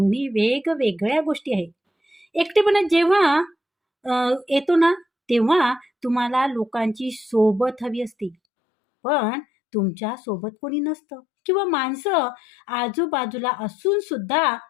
वेगवेगळ्या गोष्टी आहेत. एकटेपणा जेव्हा येतो ना तेव्हा तुम्हाला लोकांची सोबत हवी असते, पण तुमच्या सोबत कोणी नसतं किंवा माणसं आजूबाजूला असून सुद्धा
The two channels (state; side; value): drops out; right; at 8.3 s